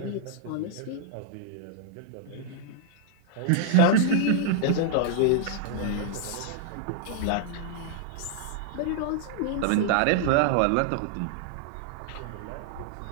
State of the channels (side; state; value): both; different; correlation -0.01